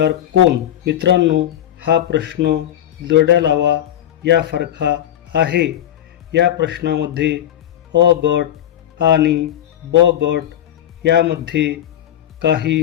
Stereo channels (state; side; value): quieter; right; 11.2 dB